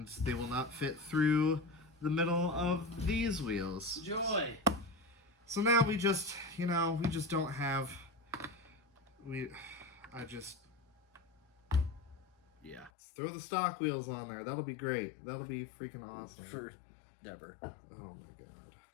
they will not fit through the middle of these wheels. Joy! So now we just don't have... Yeah. Let's throw the stock wheels on there. That'll be great. That'll be freaking awesome. For never. Oh my god.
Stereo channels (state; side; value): drops out; right; at 12.9 s